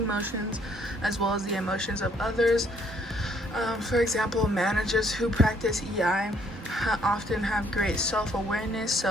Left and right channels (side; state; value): both; normal; correlation 0.65